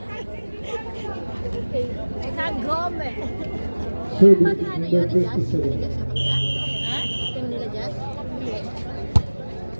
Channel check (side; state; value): both; inverted; correlation -1.00